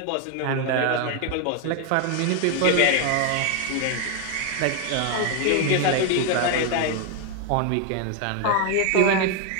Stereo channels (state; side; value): different; both; correlation 0.01